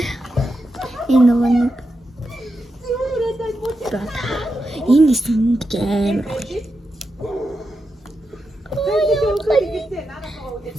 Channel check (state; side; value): normal; both; correlation 0.87